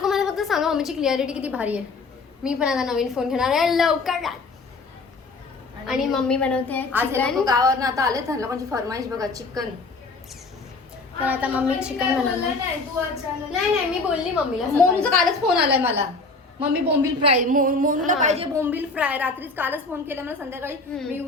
मला फक्त सांगा मम्मीची क्लिअरिटी किती भारी आहे. मी पण आता नवीन फोन घेणार आहे लवकर. आणि मम्मी बनवते चिकन. गावावरून आता आले तर लोकांची फरमाईश बघा चिकन. तर आता मम्मी चिकन बनवणार. नाही मी बोलली मम्मीला. मोनूचा कालच फोन आलाय मला. मम्मी बोंबील फ्राय. मोनूला पाहिजे बोंबील फ्राय. रात्रीच कालच फोन केला मला संध्याकाळी. मी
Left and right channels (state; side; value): quieter; right; 3.7 dB